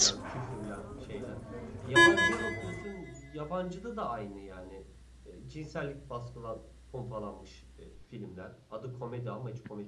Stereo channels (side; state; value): both; identical; correlation 1.00